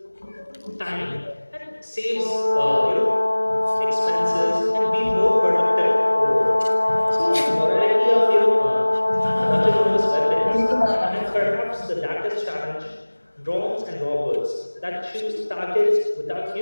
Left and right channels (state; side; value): inverted; both; correlation -1.00